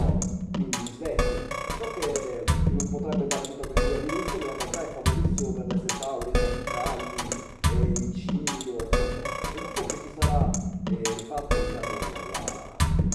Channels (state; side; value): identical; both; correlation 1.00